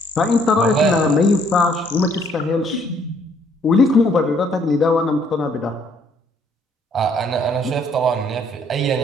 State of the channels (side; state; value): both; normal; correlation 0.65